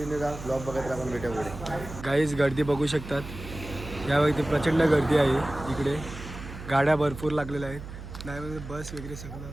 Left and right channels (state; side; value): noise; right; hum, 11 dB below the sound